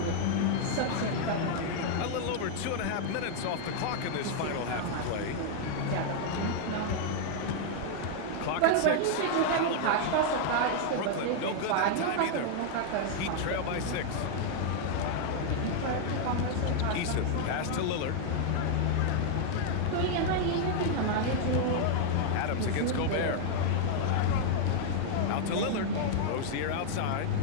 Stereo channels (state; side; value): different; both; correlation -0.01